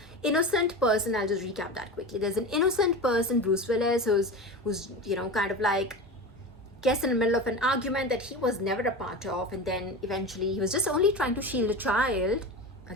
innocent person. I'll just recap that quickly. There's an innocent person, Bruce Willis, who's you know, kind of like gets in the middle of an argument that he was never a part of, and then eventually he was just only trying to shield a child.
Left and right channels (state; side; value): normal; both; correlation 0.28